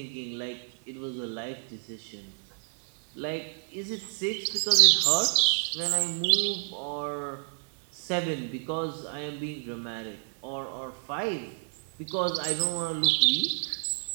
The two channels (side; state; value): left; silent; 58 dB below the other